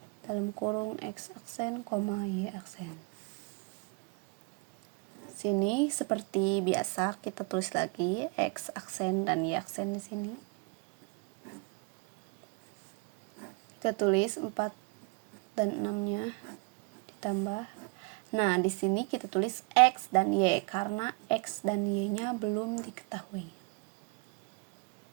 dalam kurung x aksen, y aksen. Sini seperti biasa kita tulis lagi x aksen dan y aksen di sini. Kita tulis 4 dan 6-nya ditambah. Nah, di sini kita tulis x dan y karena x dan y-nya belum diketahui.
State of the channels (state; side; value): quieter; left; 31.5 dB